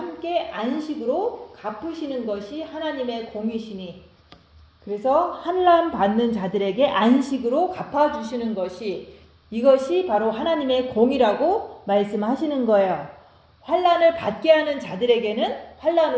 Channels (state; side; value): identical; both; correlation 1.00